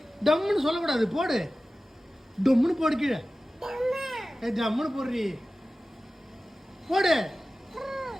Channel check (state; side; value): normal; both; correlation 0.96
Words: டம்முன்னு சொல்லக்கூடாது, போடு. டம்முன்னு போடு கீழே. ஜம்முன்னு போடுறி, போடு.